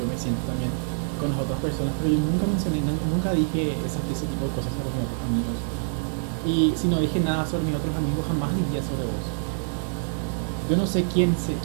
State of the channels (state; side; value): silent; left; digital silence